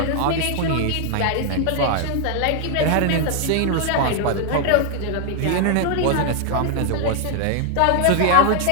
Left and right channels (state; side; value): different; both; correlation 0.00